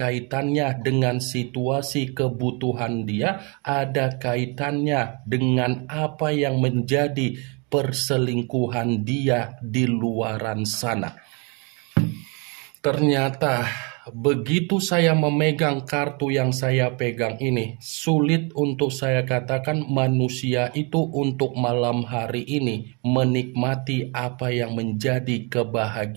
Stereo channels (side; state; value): left; quieter; 32.8 dB